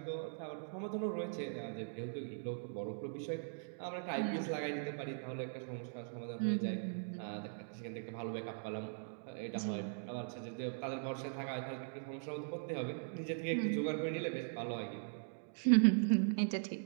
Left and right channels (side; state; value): left; silent; digital silence